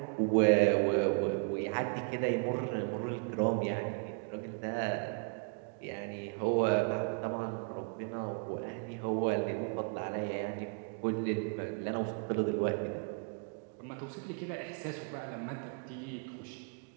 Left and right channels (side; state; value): left; quieter; 39.2 dB